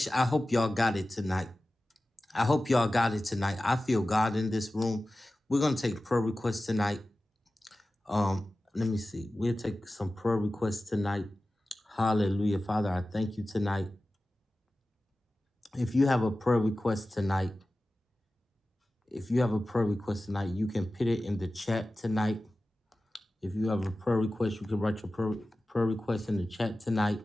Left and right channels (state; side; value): normal; both; correlation 0.95